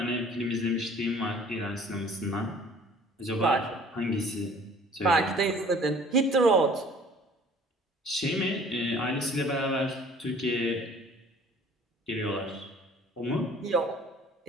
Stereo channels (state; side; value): normal; both; correlation 0.52